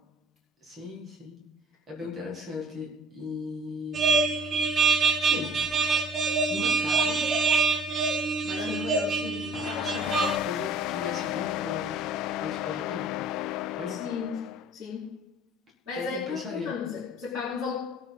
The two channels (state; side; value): normal; both; correlation 0.51